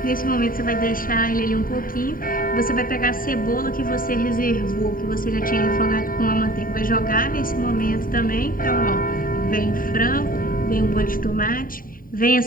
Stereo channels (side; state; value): right; late; 0.41 ms